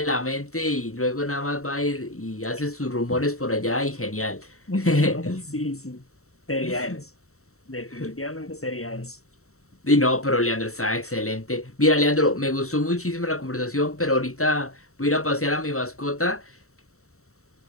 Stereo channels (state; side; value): late; right; 0.64 ms